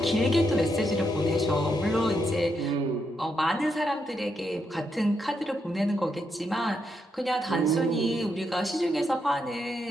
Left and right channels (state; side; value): normal; both; correlation 0.80